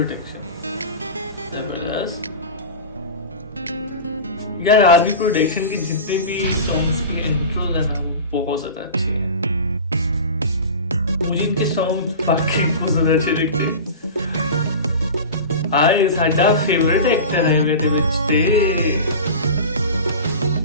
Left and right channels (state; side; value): inverted; both; correlation -0.31